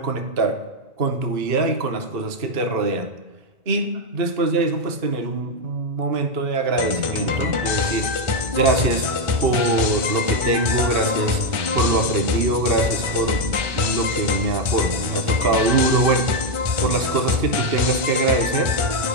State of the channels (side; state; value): left; late; 1.5 ms